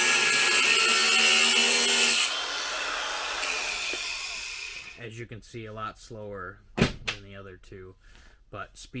As you can see, a lot slower than the other two, but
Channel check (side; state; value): both; identical; correlation 1.00